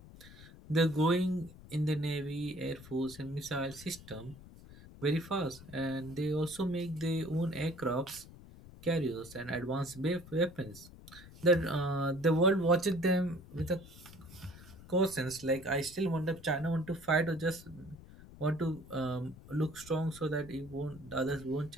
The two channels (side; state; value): left; noise; rumble, 18 dB below the sound